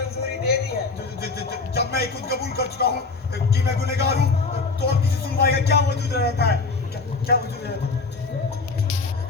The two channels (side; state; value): right; quieter; 4.1 dB